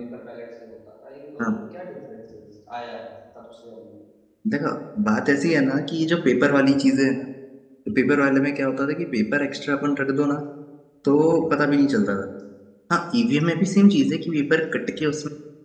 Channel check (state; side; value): identical; both; correlation 1.00